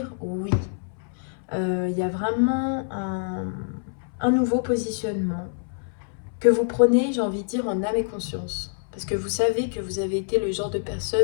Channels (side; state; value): right; silent; 60 dB below the other